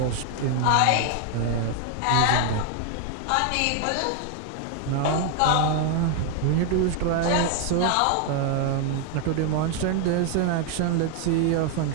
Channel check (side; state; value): both; different; correlation 0.00